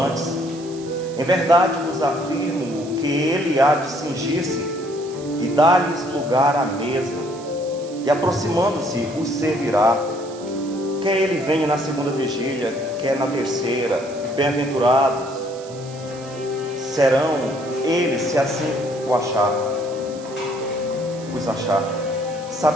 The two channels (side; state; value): right; noise; hiss, 19 dB below the sound